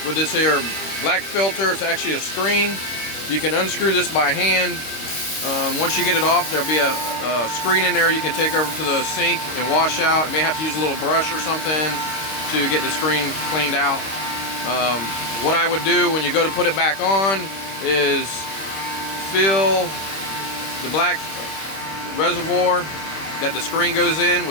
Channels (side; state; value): right; late; 26 ms